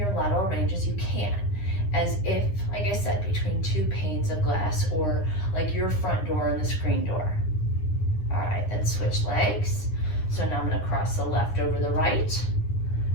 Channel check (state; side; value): late; right; 9.8 ms